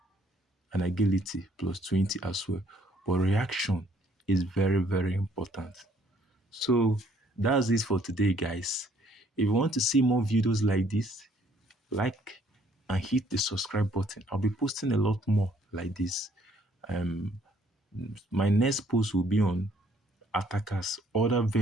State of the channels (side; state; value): both; normal; correlation 0.64